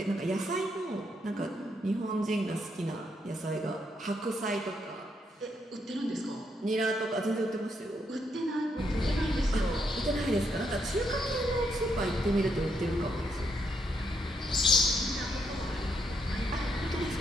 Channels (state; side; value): normal; both; correlation 0.77